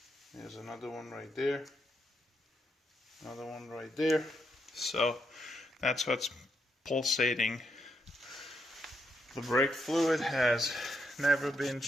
There's another one right there. Another one right there. So that's what's pulsating. The brake fluid has never been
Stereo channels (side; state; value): both; normal; correlation 0.79